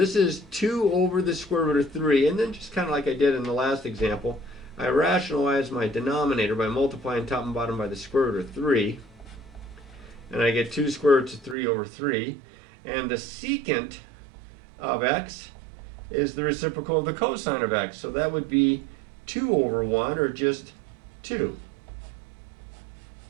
is 2 over the square root of 3, and then just kind of like I did in the last example, I rationalize my denominator by multiplying top and bottom by the square root of 3, and I get 2 square roots of 3 over 3, and the secant of x is the reciprocal of the cosine of x, so that would be 2 over 1, or just 2.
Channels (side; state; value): left; drops out; at 11.6 s